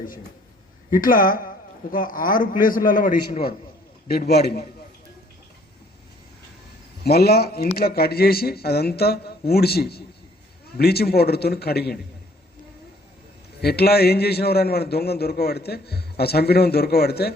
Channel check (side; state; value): both; normal; correlation 0.60